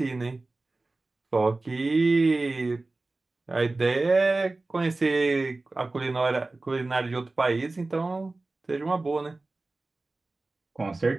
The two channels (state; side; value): quieter; left; 3.2 dB